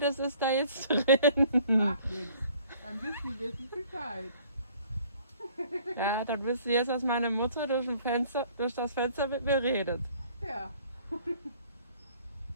ist da jetzt drin. Macht nichts. Dann wissen wir Bescheid. Ja, dann wisst ihr jetzt, dass meine Mutter durch das Fenster mit mir redet. Ja.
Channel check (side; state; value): both; inverted; correlation -0.56